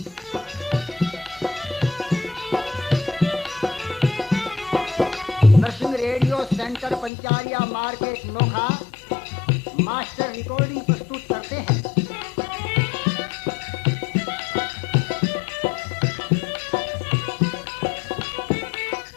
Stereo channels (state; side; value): drops out; right; at 7.1 s